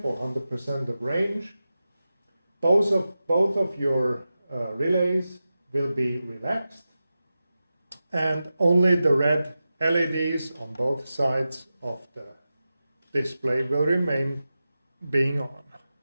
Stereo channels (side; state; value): both; inverted; correlation -0.93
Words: or 100% of range, both of your relays will be relaxed, and only the red LEDs on both sides of the display will remain being on.